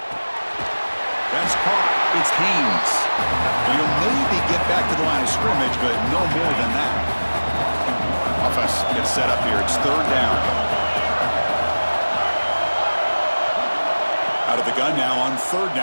That's caught. It's Haynes. He'll maybe get back to the line of scrimmage, but no more than that. Offense gets set up here. It's third down. Out of the gun now on third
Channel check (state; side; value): inverted; both; correlation -1.00